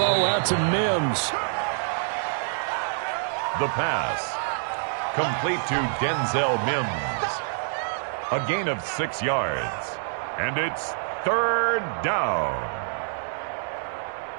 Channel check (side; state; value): left; silent; digital silence